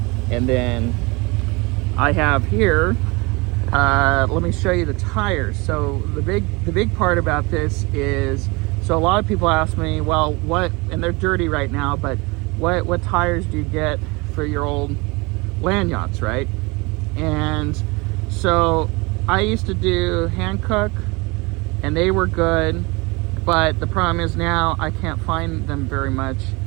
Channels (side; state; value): left; quieter; 26.0 dB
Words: And then I have here, let me show you the tires. So the big part about this is, so a lot of people ask me, well, what, and they're dirty right now, but what tires do you get for your old land yachts, right? And so I used to do Hankook, and they were good, but the problem is now I can't find them very much.